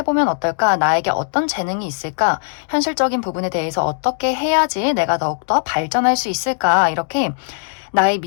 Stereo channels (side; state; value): right; silent; digital silence